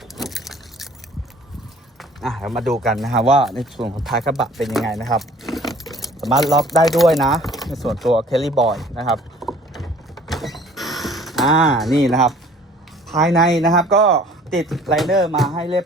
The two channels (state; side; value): normal; both; correlation 0.52